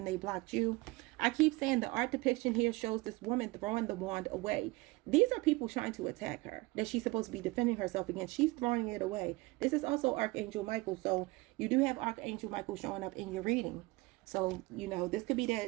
they blocked you. I keep saying the art depiction here shows this woman throwing the wand away. These are people trying to attack her that she's supposed to be defending herself against. She's throwing it away. This is also Archangel Michael. So you do have Archangel Michael showing up in your reading. So, you know, this could be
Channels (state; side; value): quieter; left; 22.6 dB